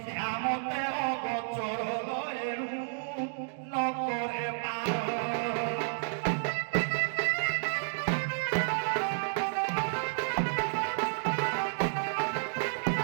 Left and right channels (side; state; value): left; silent; digital silence